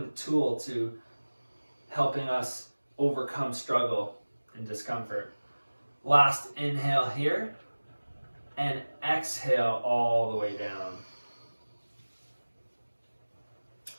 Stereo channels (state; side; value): inverted; both; correlation -1.00